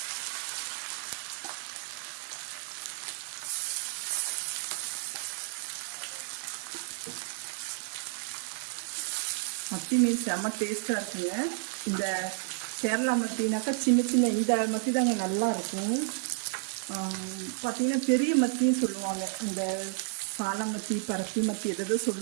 மத்தி மீன் செம்ம டேஸ்ட்டாக இருக்குங்க. இந்த கேரளா மத்தினாக்கா சின்ன சின்ன இந்த மத்தி தாங்க நல்லா இருக்கும். பார்த்திங்கன்னா பெரிய மத்தியும் சொல்லுவாங்க, இந்த சால மத்தி, பரத்தி மத்தி எதோ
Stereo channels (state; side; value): silent; left; 57 dB below the other